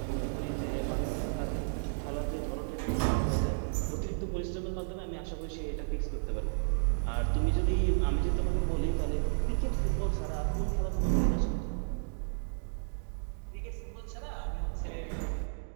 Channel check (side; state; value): left; silent; digital silence